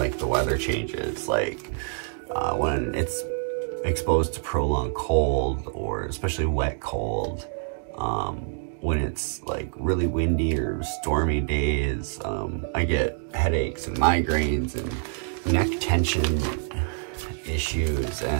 the weather changes, like when it's exposed to prolonged cold, or especially wet cold, when it's like really windy or stormy days, I get headaches and migraines and neck tension issues,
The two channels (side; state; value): left; silent; digital silence